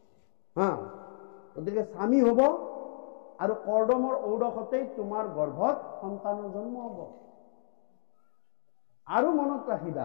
গতিকে স্বামী হ'ব, আৰু কৰ্দমৰ ঔৰসতেই তোমাৰ গৰ্ভত সন্তানৰ জন্ম হ'ব। আৰু মনত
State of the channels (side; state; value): right; silent; digital silence